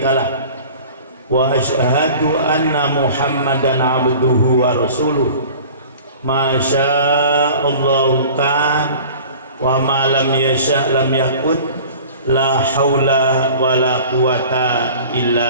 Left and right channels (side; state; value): both; inverted; correlation -0.43